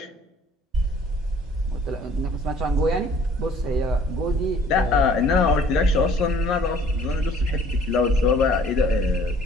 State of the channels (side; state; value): both; normal; correlation 0.55